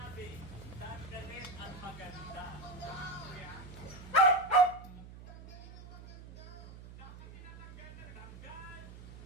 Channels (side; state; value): right; noise; hum, 15 dB below the sound